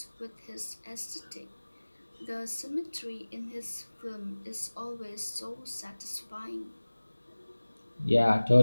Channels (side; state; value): both; inverted; correlation -1.00